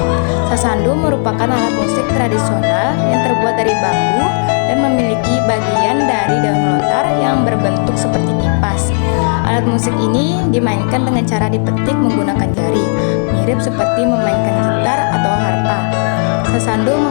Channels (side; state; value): right; silent; 62 dB below the other